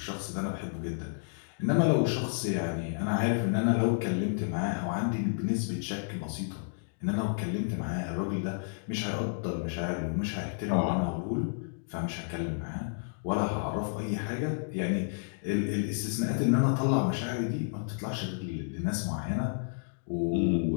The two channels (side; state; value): right; silent; digital silence